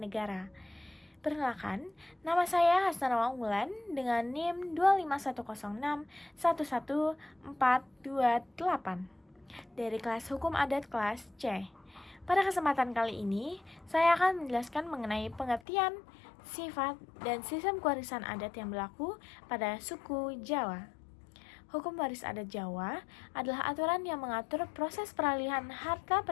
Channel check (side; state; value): right; drops out; at 15.6 s